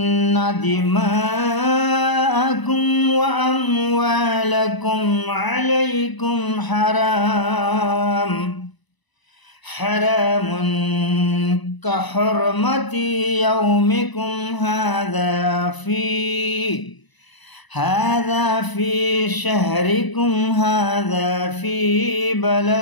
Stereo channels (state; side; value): late; right; 1.0 ms